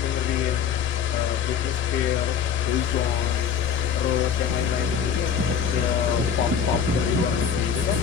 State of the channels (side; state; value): right; quieter; 7.5 dB